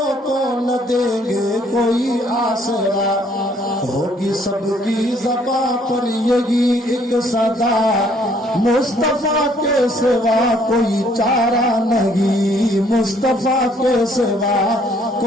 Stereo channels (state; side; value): normal; both; correlation 0.64